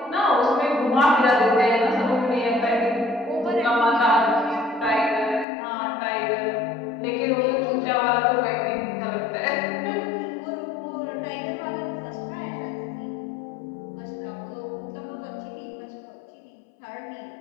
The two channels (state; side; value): drops out; right; at 5.5 s